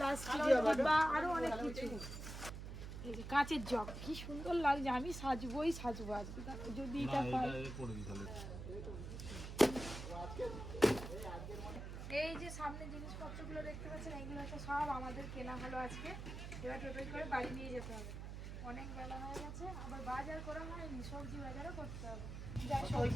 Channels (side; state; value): right; noise; hum, 7 dB below the sound